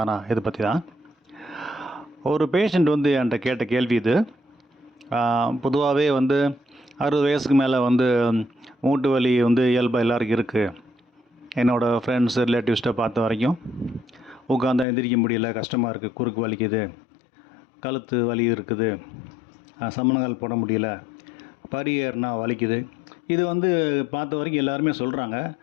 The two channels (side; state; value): right; drops out; at 14.9 s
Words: இதை பற்றி தான். ஒரு பேஷண்ட் என்கிட்ட கேட்ட கேள்வி இது. பொதுவாகவே 60 வயசுக்கு மேலே மூட்டு வலி இயல்பாக எல்லாருக்கும் இருக்குது. என்னோடய ஃப்ரெண்ட்ஸ் ரிலேட்டிவ்ஸ்ட்டை பார்த்த வரைக்கும் உட்காந்தா எந்திரிக்க முடியல, கஷ்டமாக இருக்குது, குறுக்கு வலிக்குது, கழுத்து வலி இருக்குது, சமணங்கால் போட முடியல, படி ஏறினா வலிக்குது. இது பார்த்த வரைக்கும் எல்லாருமே சொல்கிறாங்க.